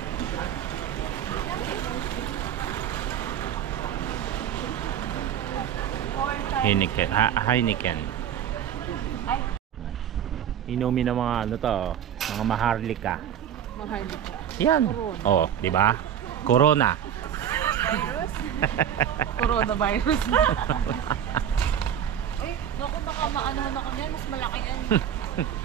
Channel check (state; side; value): quieter; left; 9.6 dB